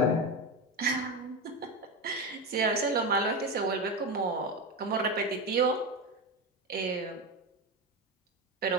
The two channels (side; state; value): both; normal; correlation 0.17